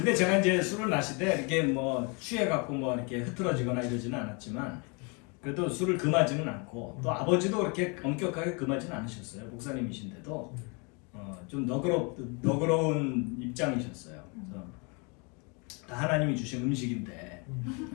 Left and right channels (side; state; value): right; quieter; 32.5 dB